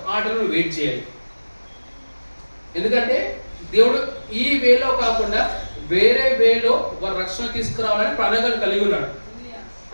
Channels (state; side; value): inverted; both; correlation -1.00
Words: ఆ టైంలో నువ్వు వెయిట్ చేయాలి. ఎందుకంటే దేవుడు ఈ వేలో కాకుండా వేరే వేలో వారు రక్షణ తీసుకురావాలని ప్రణాళికలు కలిగి ఉన్నాడు.